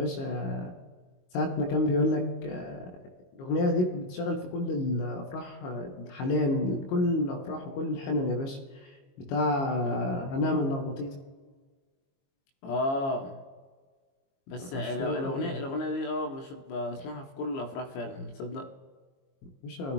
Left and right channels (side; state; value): right; late; 22 ms